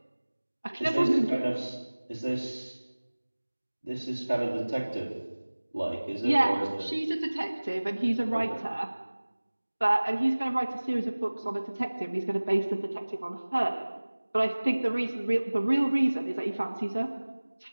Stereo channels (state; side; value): inverted; both; correlation -1.00